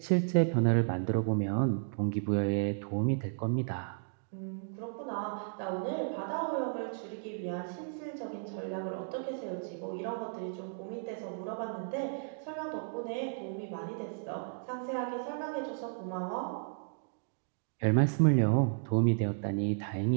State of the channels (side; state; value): left; silent; digital silence